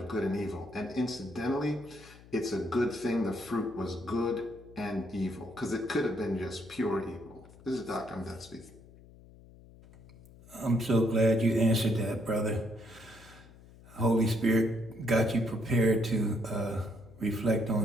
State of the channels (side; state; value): left; noise; hum, 22 dB below the sound